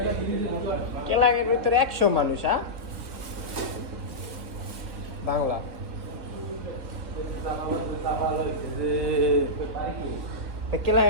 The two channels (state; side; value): late; left; 1.4 ms